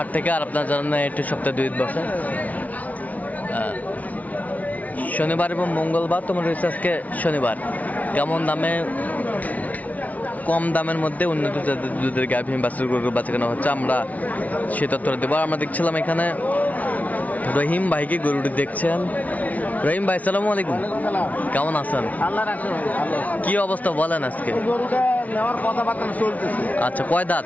থেকে। আর আপনার জানেন এটি সপ্তাহে 2 দিন বসে, শনিবার এবং মঙ্গলবার। তোমার রয়েছে আজকে শনিবার। কেমন দামে, কম দামের মধ্যে উন্নত জাতের দুধের গাভী বাছুর গরু বাচ্চানো হচ্ছে, আমরা সে তথ্যটা দেবো। আমরা দেখছিলাম এখানে রহিম ভাইকে গরুটি দেখছেন। রহিম ভাই সালামু আলাইকুম, কেমন আছেন? কি অবস্থা বলেন আজকে? আচ্ছা, কয় দাঁত?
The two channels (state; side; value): late; right; 0.072 ms